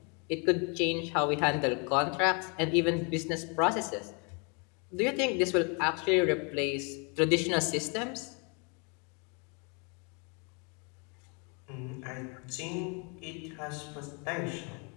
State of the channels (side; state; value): right; quieter; 34.4 dB